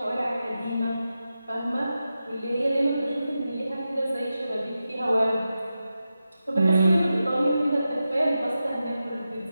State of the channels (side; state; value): both; inverted; correlation -0.91